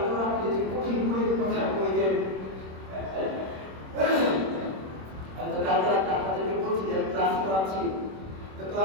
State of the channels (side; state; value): left; late; 26 ms